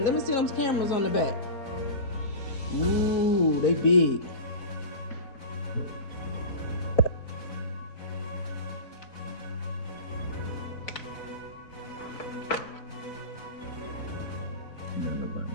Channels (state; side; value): late; right; 4.0 ms